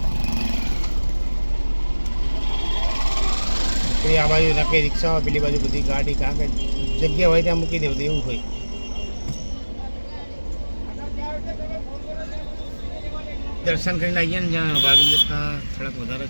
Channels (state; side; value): inverted; both; correlation -1.00